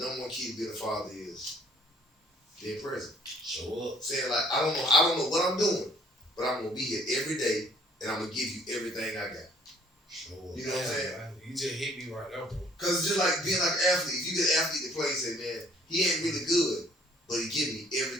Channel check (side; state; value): both; normal; correlation 0.59